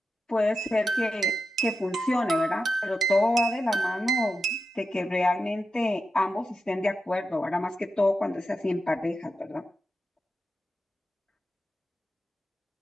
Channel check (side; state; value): both; normal; correlation 0.89